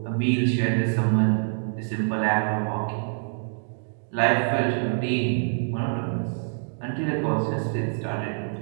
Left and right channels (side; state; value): left; silent; digital silence